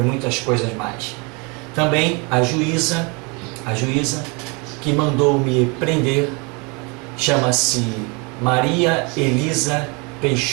muitas coisas mais. Também a juíza que mandou me prender chama-se Maria Elisa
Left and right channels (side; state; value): left; quieter; 30.5 dB